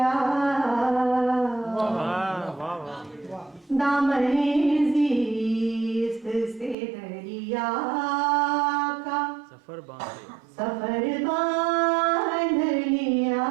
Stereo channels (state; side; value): drops out; left; at 6.8 s